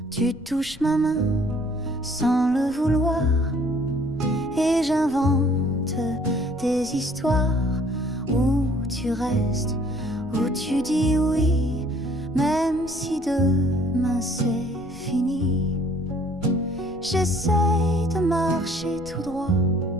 Tu touches ma main sans le vouloir, et j'invente des histoires où tu restes, où tu dis oui, même si demain c'est fini. J'essaye de marcher tout droit,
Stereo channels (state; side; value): noise; left; rumble, 21 dB below the sound